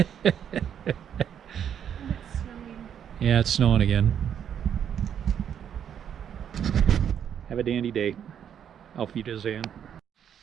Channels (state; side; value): quieter; left; 8.8 dB